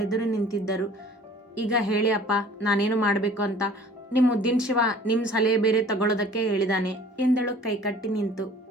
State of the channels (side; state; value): both; normal; correlation 0.49